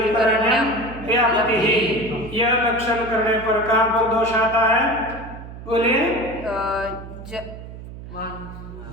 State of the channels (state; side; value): noise; right; hum, 13 dB below the sound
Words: यह लक्षण करने पर कहाँ पर दोष आता है? बोलिए।